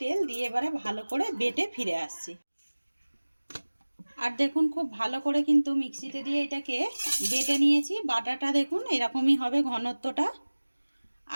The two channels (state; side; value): inverted; both; correlation -1.00